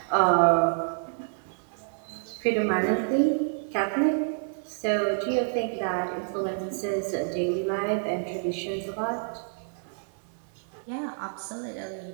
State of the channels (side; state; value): left; silent; 59 dB below the other